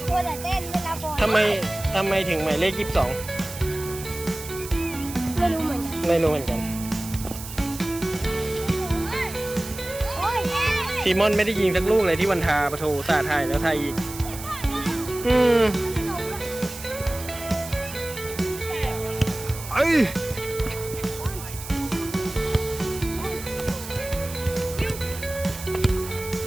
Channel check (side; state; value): right; noise; hiss, 12 dB below the sound